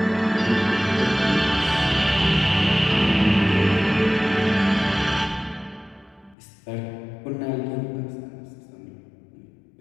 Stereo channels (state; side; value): drops out; right; at 6.4 s